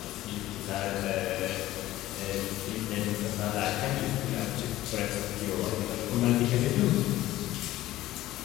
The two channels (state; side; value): quieter; right; 15.5 dB